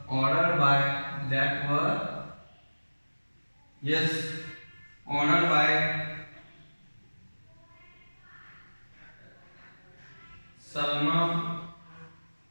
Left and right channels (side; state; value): both; inverted; correlation -1.00